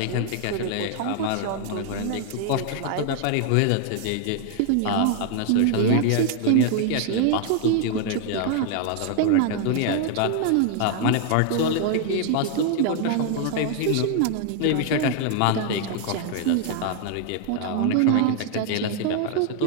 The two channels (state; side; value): different; both; correlation 0.00